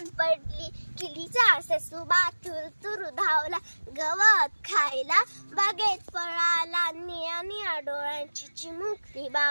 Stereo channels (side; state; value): both; inverted; correlation -1.00